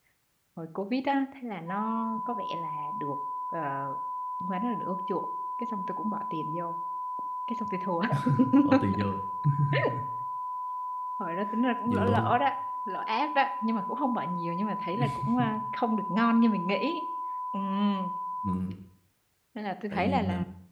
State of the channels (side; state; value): both; identical; correlation 1.00